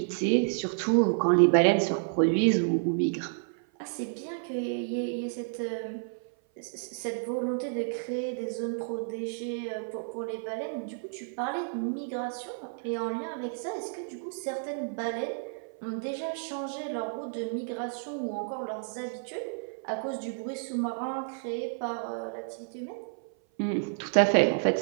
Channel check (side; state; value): left; silent; 56 dB below the other